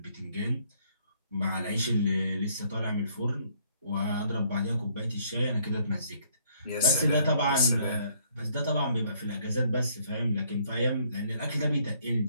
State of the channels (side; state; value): both; inverted; correlation -0.65